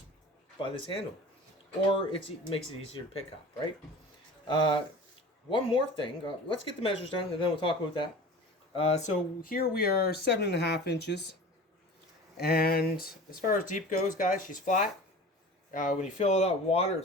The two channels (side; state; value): both; normal; correlation 0.38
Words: by this handle, or it makes it easier to pick up, right? One more thing, let's get the measures done and then we'll talk about that. So here we are 7.5 inches, and as far as deep goes, guys, she's flat. When you fill it up with water, it